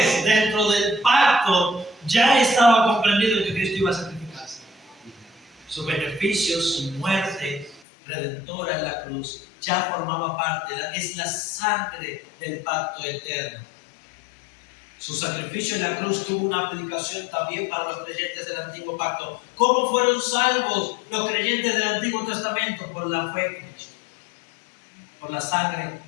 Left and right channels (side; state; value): right; drops out; at 7.8 s